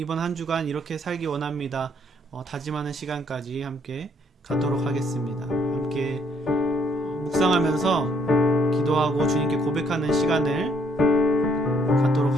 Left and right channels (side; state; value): both; normal; correlation 0.67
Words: 한 주간 이렇게 살기 원합니다. 다짐하는 시간까지 함께 갖도록 하겠습니다. 함께 묵상하면서 기도하고 주님께 고백하는 시간을